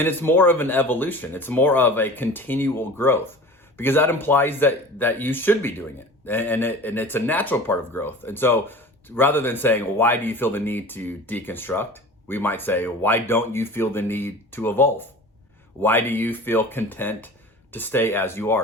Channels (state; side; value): normal; both; correlation 0.38